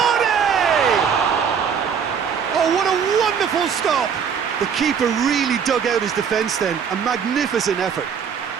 Oh, what a wonderful stop! The keeper really dug out his defence then. A magnificent effort.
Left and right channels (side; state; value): left; quieter; 7.1 dB